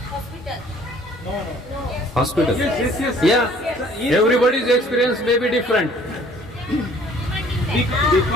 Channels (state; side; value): normal; both; correlation 0.56